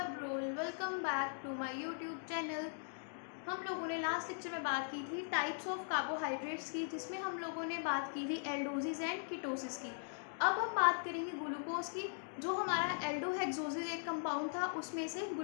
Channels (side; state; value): right; silent; digital silence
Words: Brol. Welcome back to my YouTube channel. हम लोगों ने last lecture में बात की थी टाइप्स ऑफ कार्बोहाइड्रेट्स की, जिसमें हम लोगों ने बात की थी एल्डोसिस एंड कीटोसिस की। अब हम बात करेंगे ग्लूकोज की। जो हमारा एल्डोहेक्सोसिस एक कंपाउंड था, उसमें से